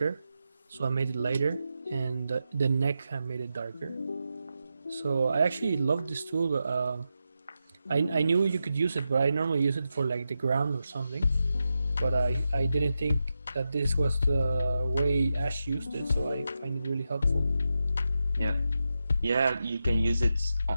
so I made it lighter, and the neck I made it darker. So I actually love this tool. I knew you could use it, but I normally use it for like the ground or something. But I didn't think that this was the way Ash used it, so I find it really helpful. Yeah, you can use it.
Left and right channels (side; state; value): both; inverted; correlation -0.88